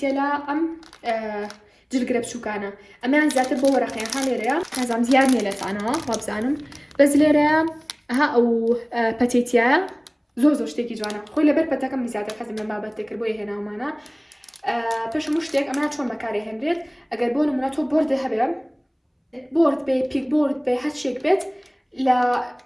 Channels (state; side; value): identical; both; correlation 1.00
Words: ام جلقرب شو كان امان زات بو ورقه هاليريا نازعم ديار نيلت انا وابزانم بس ليريا ها او باتيتيا زور شتيكي جوانا خوي لبر بتاكم زياده حزم لما بتكر بو هنا ومانا باش مشتك امان شلون مكاري هندريت اگر بون مناتو بورد هبم بورد بي بيك بورد بي هاتشيك بيت لا